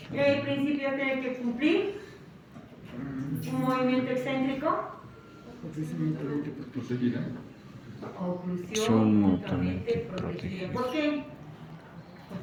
El principio tiene que cumplir un movimiento excéntrico. Oclusión Son mutuamente mutuamente protegida. protegidas. ¿Por qué?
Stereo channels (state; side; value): identical; both; correlation 1.00